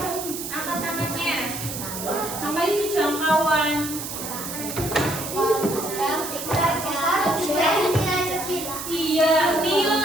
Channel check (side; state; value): right; noise; hiss, 7 dB below the sound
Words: angkat tangannya. Apa itu jangkauan? Iya,